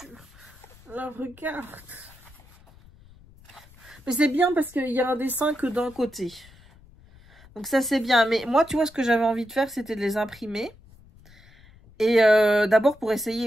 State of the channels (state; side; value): noise; left; rumble, 25 dB below the sound